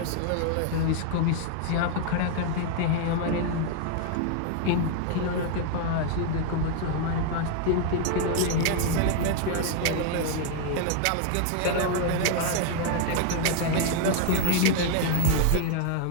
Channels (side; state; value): both; different; correlation 0.00